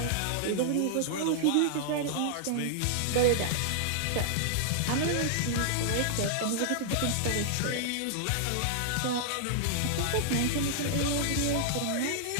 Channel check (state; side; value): different; both; correlation -0.01